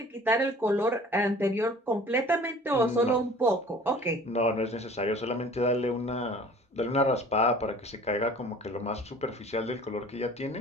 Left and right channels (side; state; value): both; normal; correlation 0.47